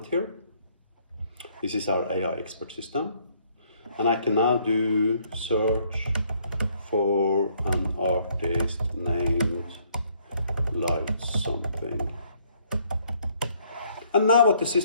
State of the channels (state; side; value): inverted; both; correlation -0.66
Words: here. This is our AI expert system. And I can now do search for an artist named Light Something. And now what the